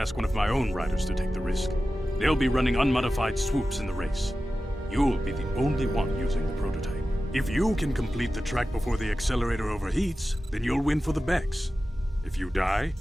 one of my own riders to take the risk. They'll be running unmodified swoops in the race. You'll be the only one using the prototype. If you can complete the track before the accelerator overheats, then you'll win for the Bex. If you die,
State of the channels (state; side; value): normal; both; correlation 0.94